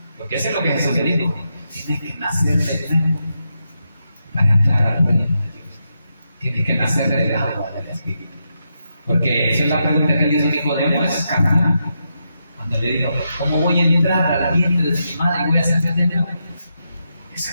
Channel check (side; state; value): both; inverted; correlation -0.84